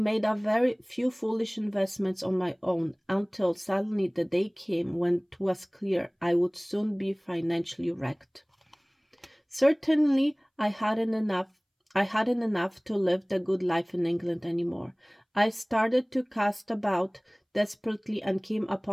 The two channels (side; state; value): both; identical; correlation 1.00